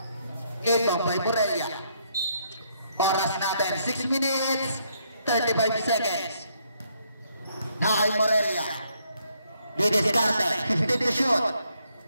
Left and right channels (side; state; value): both; inverted; correlation -0.72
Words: Ito, by Morelia. Oras natin, 6 minutes, 35 seconds. Nakay Morelia. Didiscarte, 15 to shoot.